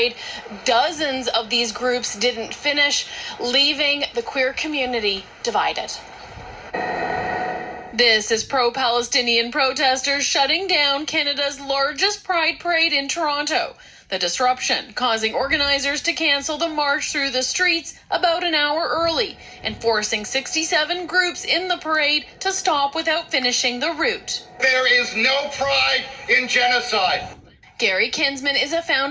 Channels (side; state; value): both; identical; correlation 1.00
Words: Dozens of these groups didn't finish, leaving the queer community divided. This is pro-Palestinian protesters shutting down Canada's largest Pride Parade in Toronto. The disruption causing organizers to cancel the march through the streets about an hour early and forcing 67 groups in the parade to stop without finishing the route. There is no pride in genocide. Gary Kinsman is a